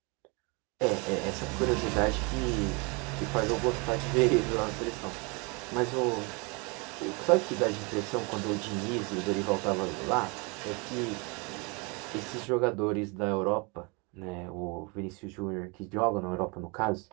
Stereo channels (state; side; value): quieter; left; 30.3 dB